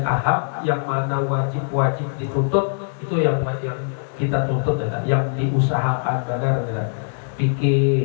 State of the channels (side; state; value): right; silent; digital silence